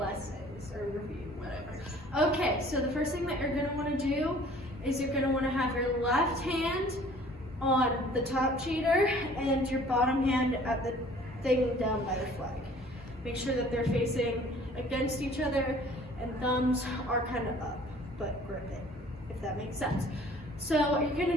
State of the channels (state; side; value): normal; both; correlation 0.52